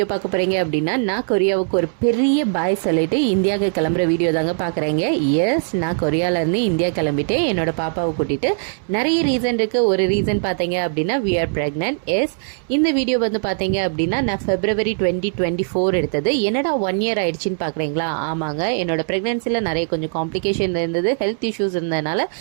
பார்க்க போகிறீங்க அப்படின்னா, நான் கொரியாவுக்கு ஒரு பெரிய பாய் சொல்லிட்டு இந்தியாவுக்கு கிளம்புற வீடியோ தாங்க பார்க்குறேங்க. எஸ், நான் கொரியாவிலேருந்து இந்தியா கிளம்பிட்டு என்னோட பாப்பாவை கூட்டிகிட்டு நிறைய ரீசன் இருக்குது. ஒரு ரீசன் பார்த்தீங்க அப்படின்னா வி ஆர் ப்ரெக்னென்ட். எஸ், இந்த வீடியோ வந்து பார்த்தீங்க அப்படின்னா நான் February 2024 எடுத்தது. என்னடா 1 year ஆயிடுச்சின்னு பார்க்குறீங்களா? ஆமாங்க, என்னோட ப்ரெக்னென்சியில் நிறைய கொஞ்சம் காம்ப்ளிகேஷன் இருந்தது, ஹெல்த் இஷ்யூஸ் இருந்ததுனால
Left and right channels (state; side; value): silent; left; 66 dB below the other